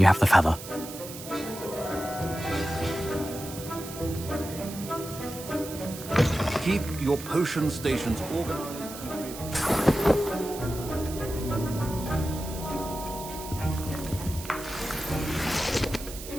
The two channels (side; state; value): right; noise; hiss, 12 dB below the sound